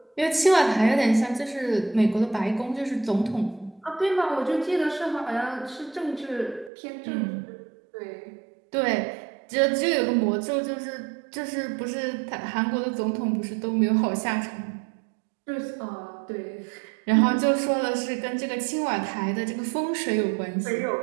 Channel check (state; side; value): drops out; left; at 6.7 s